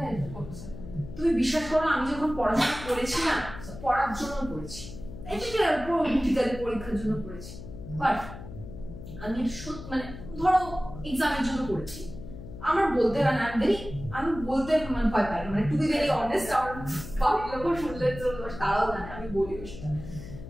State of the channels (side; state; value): left; noise; hum, 12 dB below the sound